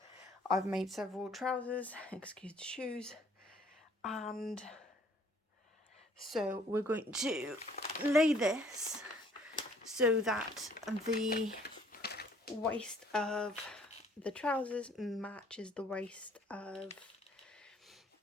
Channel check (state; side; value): normal; both; correlation 0.59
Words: I've made several trousers, excuse the shoes, and so we're going to lay this so that the waist of the trousers matches the waist of